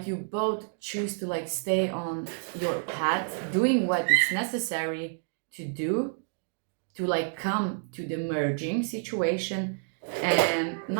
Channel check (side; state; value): left; silent; digital silence